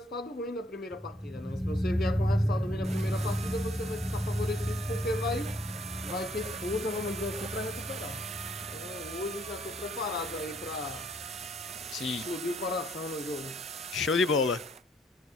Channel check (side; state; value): both; normal; correlation 0.67